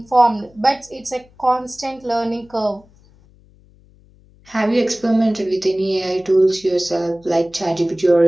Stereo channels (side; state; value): left; noise; hum, 29 dB below the sound